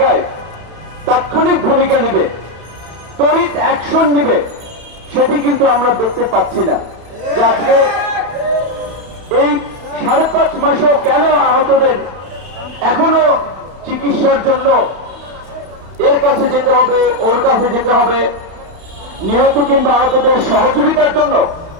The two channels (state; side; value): late; left; 31 ms